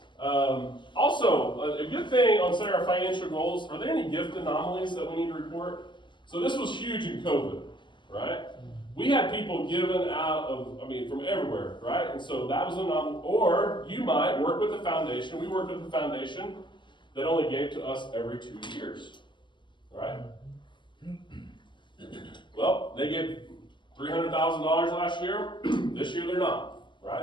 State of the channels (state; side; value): late; right; 0.23 ms